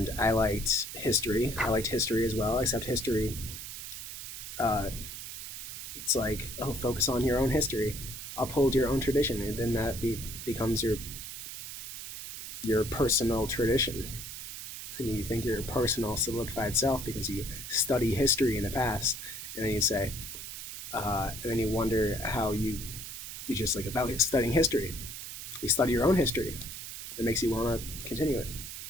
I liked history. I liked history as well. Except history, uh, it's like, oh, focus on your own history, uphold your own tradition, and then becomes your personal tradition. And you think you're a personal solidified self because you study history in the past, and then you say, and then you wonder how you just like about studying history. You study your own history. It makes you want to continue it,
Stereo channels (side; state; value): right; noise; hiss, 9 dB below the sound